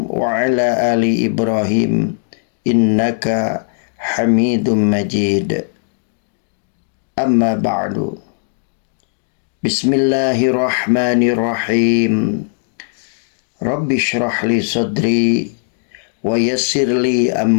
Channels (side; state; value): right; silent; digital silence